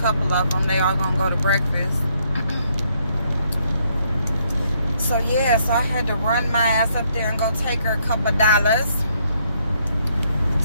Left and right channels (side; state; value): both; inverted; correlation -0.71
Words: of them, they all gonna go to breakfast. So yeah, so I had to run my ass up there and go take her a couple dollars.